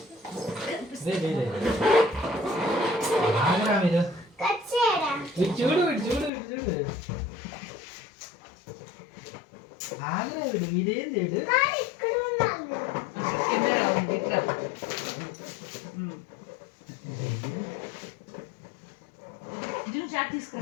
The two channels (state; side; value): drops out; right; at 6.3 s